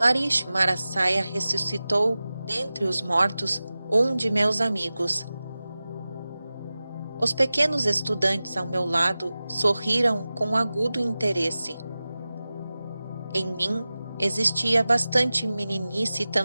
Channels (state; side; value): inverted; both; correlation -0.96